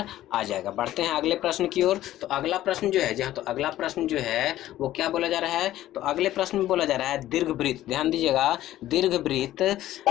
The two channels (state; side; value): quieter; right; 13.9 dB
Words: आ जाएगा। बढ़ते हैं अगले प्रश्न की ओर। तो अगला प्रश्न जो है, जहाँ तो अगला प्रश्न जो है वो क्या बोला जा रहा है, तो अगले प्रश्न में बोला जा रहा है दीर्घवृत्त, ध्यान दीजिएगा, दीर्घवृत्त